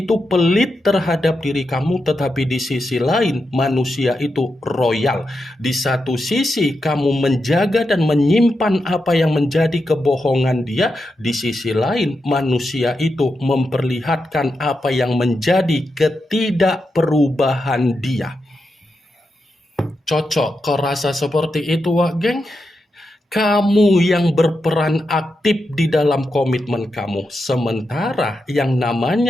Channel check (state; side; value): normal; both; correlation 0.87